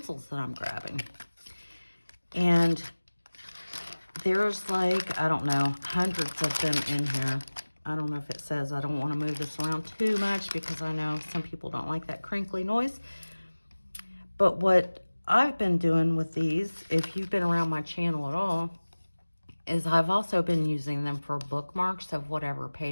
that I'm grabbing. And there's like, I don't know, hundreds of them in here. I don't know if it says, I don't want to move this around too much because I know some people don't like that crinkly noise. But what I've been doing with these, if you've been around my channel at all, is I've also been using them for bookmarks of whatever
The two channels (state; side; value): inverted; both; correlation -1.00